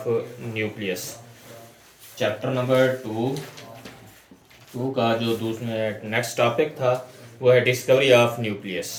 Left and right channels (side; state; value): both; identical; correlation 1.00